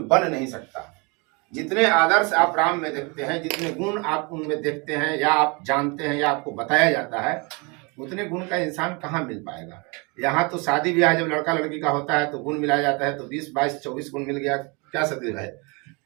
बन नहीं सकता। जितने आदर्श आप राम में देखते हैं, जितने गुण आप उनमें देखते हैं, या आप जानते हैं, या आपको बताया जाता है, उतने गुण का इंसान कहाँ मिल पाएगा। यहाँ तो शादी ब्याह जब लड़का लड़की का होता है तो गुण मिलाया जाता है, तो 20, 22, 24 गुण मिल गया, क्या सदी है,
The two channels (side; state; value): left; quieter; 29.8 dB